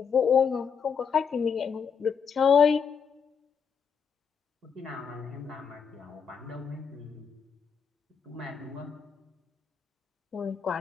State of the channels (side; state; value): right; quieter; 6.5 dB